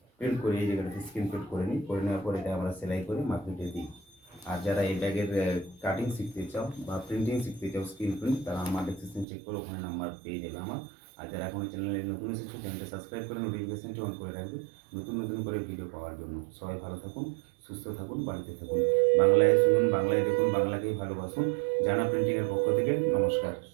প্রিন্ট করে এই জায়গাটাতে স্ক্রিন প্রিন্ট করে নিই। করে নেওয়ার পর এটা আমরা সেলাই করে মার্কেটে দিই। আর যারা এই ব্যাগের কাটিং শিখতে চাও বা প্রিন্টিং শিখতে চাও স্ক্রিন প্রিন্ট, তারা আমার ডেসক্রিপশন চেক করে ওখানে নাম্বার পেয়ে যাবে আমার। আর যারা এখনও চ্যানেলে নতুন এসেছে চ্যানেলটা সাবস্ক্রাইব করে নোটিফিকেশনটি অন করে রাখবে নতুন নতুন করে ভিডিও পাওয়ার জন্য। সবাই ভালো থাকুন, সুস্থ থাকুন, বাড়িতে থাকুন। বাংলায় শুনুন, বাংলায় দেখুন, বাংলাকেই ভালোবাসুন। জানা প্রিন্টিংয়ের পক্ষ থেকে নমস্কার,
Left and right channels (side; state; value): left; drops out; at 9.2 s